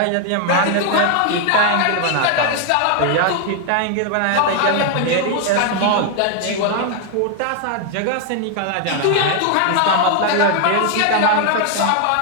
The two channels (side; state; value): both; different; correlation 0.00